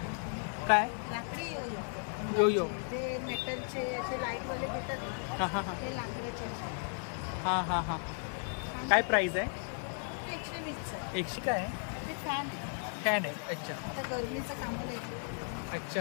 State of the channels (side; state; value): right; silent; 54 dB below the other